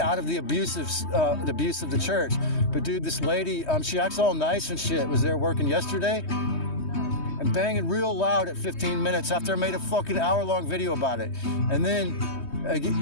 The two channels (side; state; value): right; late; 3.2 ms